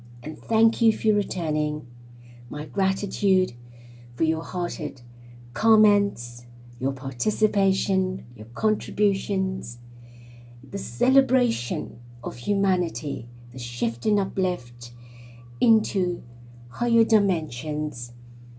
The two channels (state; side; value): identical; both; correlation 1.00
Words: and thank you for returning. My gratitude for your hearted comments, your participation, your contributions, the celebration of humanity, the shift and uplift into higher dimensions,